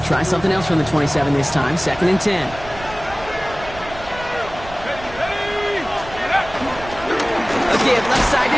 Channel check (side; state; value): right; noise; rumble, 15 dB below the sound